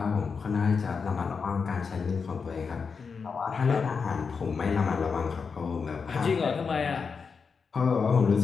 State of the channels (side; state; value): right; quieter; 5.4 dB